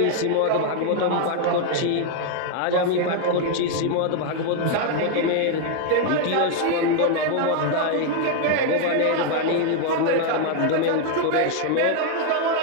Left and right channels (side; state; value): both; different; correlation 0.00